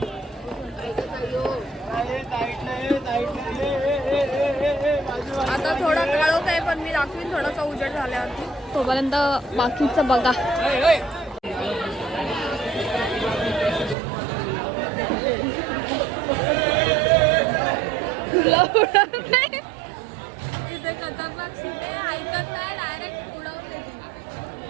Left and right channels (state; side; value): drops out; left; at 14.0 s